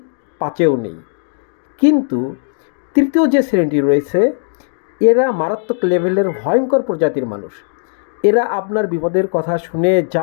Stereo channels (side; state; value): right; silent; digital silence